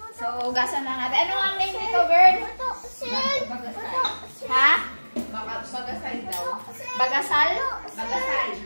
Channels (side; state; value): both; inverted; correlation -1.00